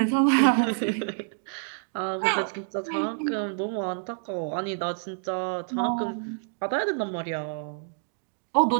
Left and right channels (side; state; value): left; silent; digital silence